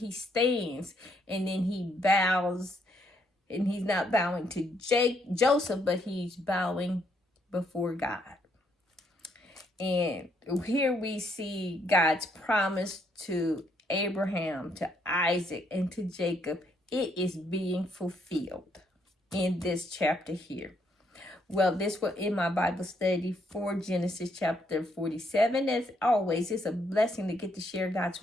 stands, and then he bows, and he's not bowing to Joseph, but he's bowing before God. And here we see God's promise to Abraham, to Isaac, and to Jacob. It is being fulfilled in this chapter here. Well, this was in my Bible study for Genesis chapter 47. As always, it's a blessing to get to share God's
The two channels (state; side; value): normal; both; correlation 0.72